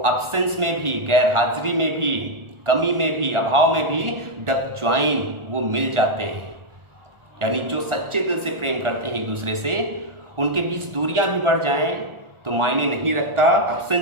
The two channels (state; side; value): late; left; 1.4 ms